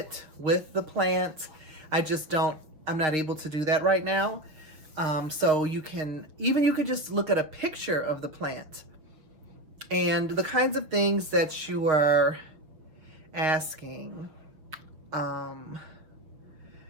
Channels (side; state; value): left; late; 6.4 ms